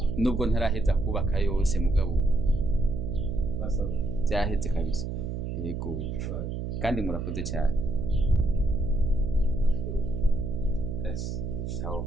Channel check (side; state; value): right; noise; hum, 4 dB below the sound